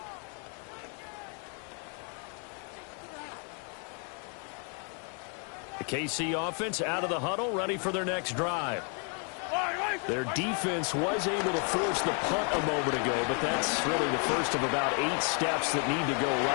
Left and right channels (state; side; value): quieter; right; 39.7 dB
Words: The KC offense out of the huddle, ready for their next drive. Their defense was able to force the punt a moment ago, but that's really the first of about 8 steps that need to go